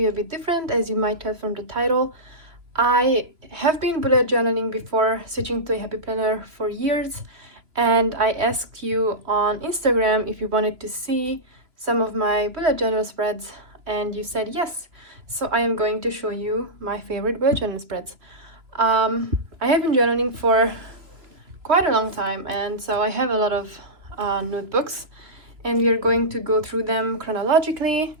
a bit different, as you might tell from the title. I have been bullet journaling before switching to a happy planner for years, and I asked you on Instagram if you wanted to see some of my bullet journal spreads, and you said yes. So I am going to show you my favorite bullet journal spreads. I have been journaling for quite a long time, and so I have a lot of notebooks, and we are going to go through them chronologically,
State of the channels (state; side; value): late; left; 3.0 ms